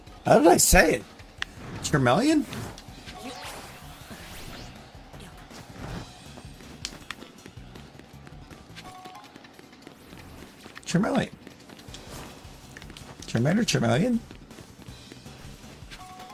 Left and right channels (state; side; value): identical; both; correlation 1.00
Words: How did I say it? Charmeleon? Charmeleon. Charmander, Charmeleon?